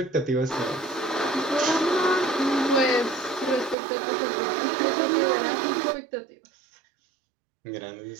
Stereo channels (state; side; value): drops out; left; at 3.8 s